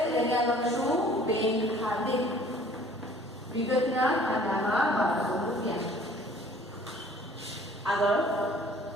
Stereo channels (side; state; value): both; normal; correlation 0.53